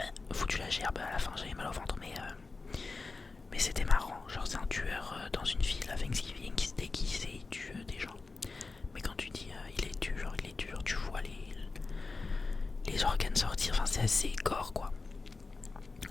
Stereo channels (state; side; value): quieter; right; 3.9 dB